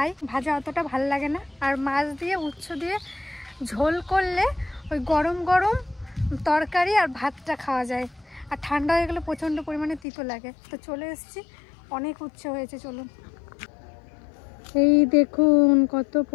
ভাজা অতটা ভালো লাগে না। আর মাছ দিয়ে উচ্ছে দিয়ে ঝোল করলে ওই গরম গরম তরকারি আর ভাতটা খাওয়া যায়। আর ঠান্ডা হয়ে গেলে প্রচণ্ড পরিমাণে তিতো লাগে। তো চলে এসেছি, অনেক উচ্ছে হয়েছে, চলুন। এই দেখুন কত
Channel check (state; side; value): drops out; right; at 10.0 s